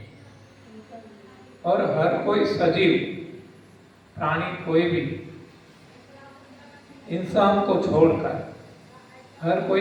और हर कोई सजीव प्राणी, कोई भी इंसान को छोड़कर हर कोई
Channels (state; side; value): identical; both; correlation 1.00